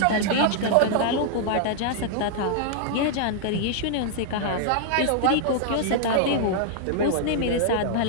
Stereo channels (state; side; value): different; both; correlation -0.01